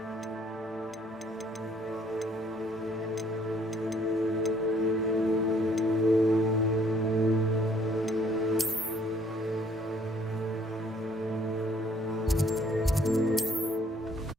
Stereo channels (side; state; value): both; normal; correlation 0.62